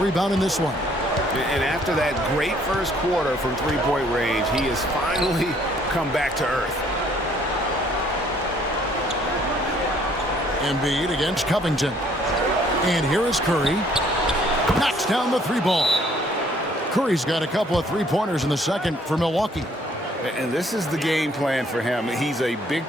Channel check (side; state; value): both; normal; correlation 0.62